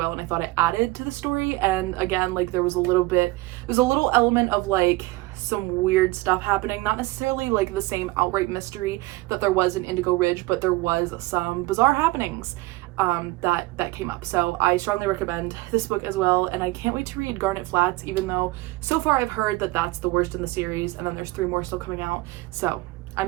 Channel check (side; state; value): left; quieter; 20.7 dB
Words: and I thought it added to the story. And again, like there was a little element of like some weird stuff happening, not necessarily like the same outright mystery that there was in Indigo Ridge, but there was some bizarre happenings that came up. So I strongly recommend this book as well, and I can't wait to read Garnet Flats, even though so far I've heard that that's the worst in the series, and then there's 3 more still coming out. So